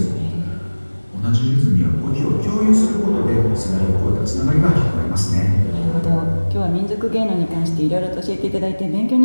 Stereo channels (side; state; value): both; inverted; correlation -1.00